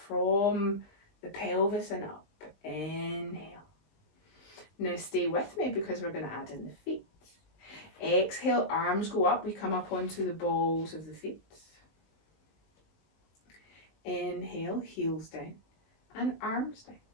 from the pelvis and up. Inhale. Now stay with me because we're going to add in the feet. Exhale, arms go up, we come up onto the balls of the feet. Inhale, heels down and arms down.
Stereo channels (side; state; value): right; late; 19 ms